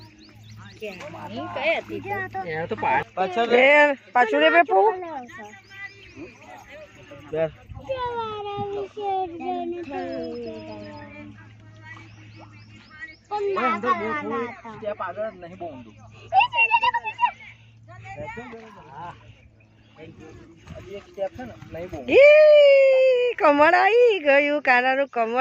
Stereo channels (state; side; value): identical; both; correlation 1.00